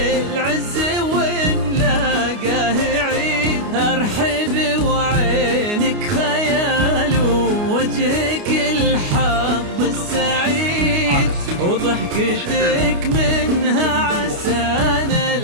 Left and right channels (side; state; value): left; late; 29 ms